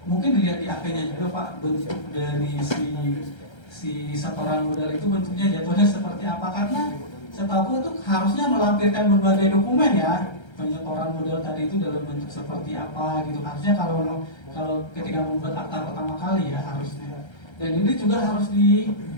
mungkin dilihat di akte-nya juga Pak, bentuk dari si setoran modal itu bentuknya jatuhnya seperti apa, karena setahu itu harusnya melampirkan berbagai dokumen ya, penyetoran modal tadi itu dalam bentuk seperti apa gitu. Harusnya kalau ketika membuat akta pertama kali ya harusnya. Dan ini juga harus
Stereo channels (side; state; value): right; late; 1.3 ms